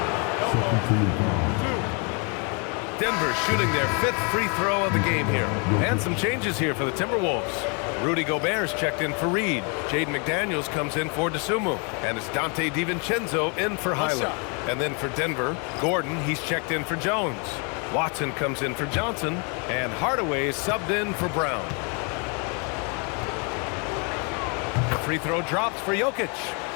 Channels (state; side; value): quieter; right; 35.3 dB